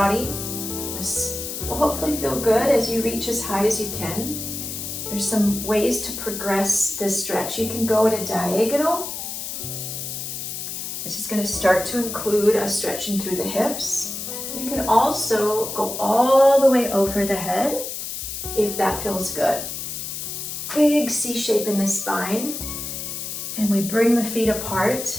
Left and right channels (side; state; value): left; noise; hiss, 6 dB below the sound